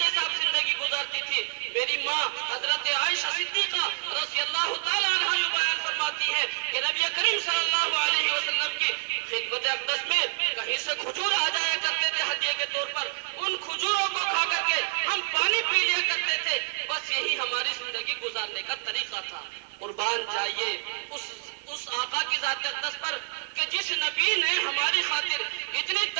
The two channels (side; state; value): left; silent; digital silence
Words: سے آپ زندگی گزارتی تھی. میری ماں حضرت عائشہ صدیقہ رضی اللہ تعالیٰ عنہا یہ بیان فرماتی ہے کہ نبی کریم صلی اللہ علیہ وسلم کی خدمت اقدس میں کہیں سے کھجور آ جایا کرتے تھے ہدیے کے طور پر, ان کھجوروں کو کھا کر کے ہم پانی پی لیا کرتے تھے. بس یہی ہماری زندگی گزارنے کا طریقہ تھا. قربان جائیے اس آقا کی ذات اقدس پر کہ جس نبی نے ہماری خاطر اتنی